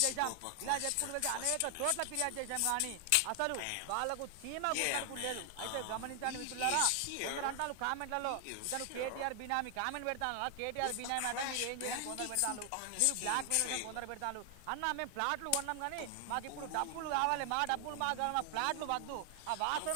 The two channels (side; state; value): both; different; correlation 0.00